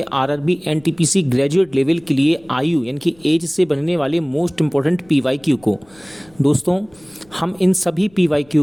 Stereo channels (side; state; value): left; noise; rumble, 29 dB below the sound